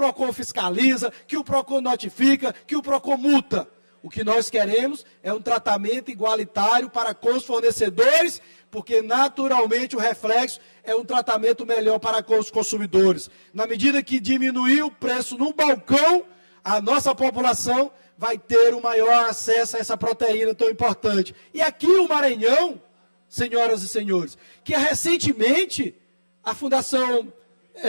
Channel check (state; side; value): inverted; both; correlation -1.00